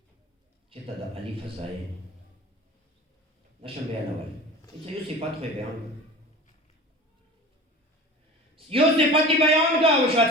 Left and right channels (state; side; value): normal; both; correlation 0.37